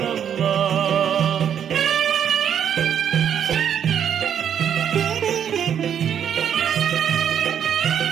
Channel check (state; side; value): quieter; left; 8.8 dB